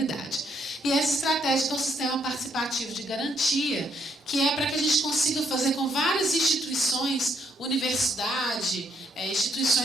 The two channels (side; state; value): both; normal; correlation 0.72